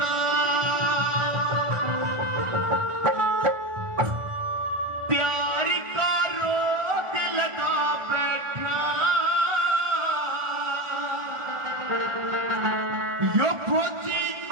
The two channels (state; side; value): late; left; 1.5 ms